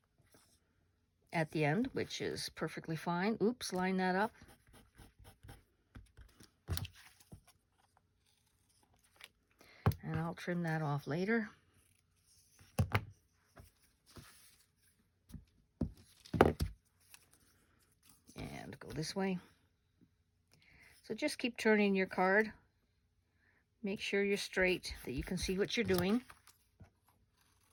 at the end, which is perfectly fine. Oops, line that up. And I'll trim that off later. And go this way. So just keep turning your card. Make sure you're straight, that you can see what you're doing.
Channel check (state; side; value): identical; both; correlation 1.00